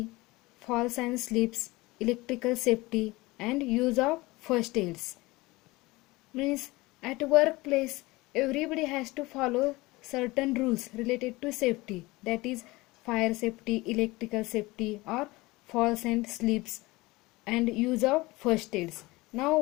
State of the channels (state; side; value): quieter; right; 21.4 dB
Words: falls and slips, electrical safety and use of first aids. Means at workplace everybody has to follow certain rules related to safety, that is fire safety, electrical safety or falls and slips and use of first aids. Now